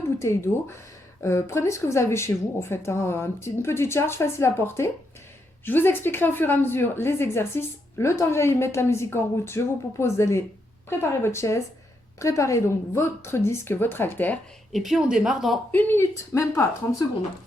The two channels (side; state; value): both; normal; correlation 0.80